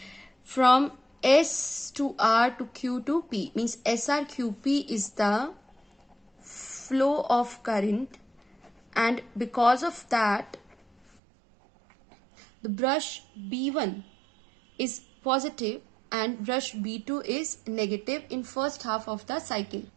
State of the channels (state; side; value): drops out; left; at 11.1 s